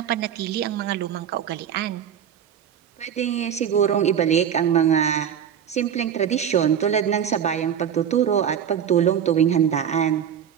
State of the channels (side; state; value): left; quieter; 8.7 dB